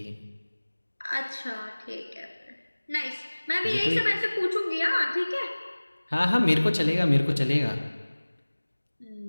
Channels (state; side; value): inverted; both; correlation -1.00